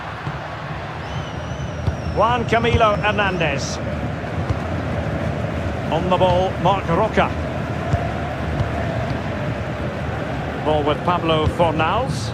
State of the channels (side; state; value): both; identical; correlation 1.00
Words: Juan Camilo Hernandez. On the ball, Marc Roca. Ball with Pablo Fornals.